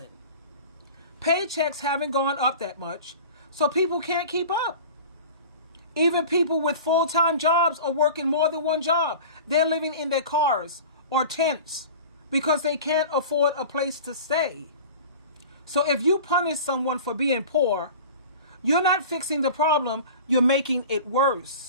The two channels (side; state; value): both; inverted; correlation -0.38